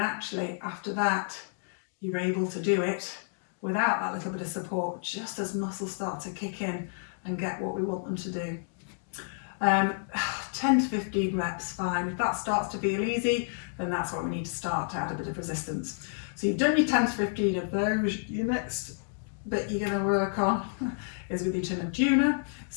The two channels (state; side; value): silent; right; digital silence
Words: actually after that you're able to do it without that little bit of support, just as muscles start to kick in and get what we want them to do. 10 to 15 reps, fine. If that starts to feel easy, then that's what we need to start to add a bit of resistance. So you've done your 10 to 15 of those. Your next bit you're going to work on is with your chin and tuner.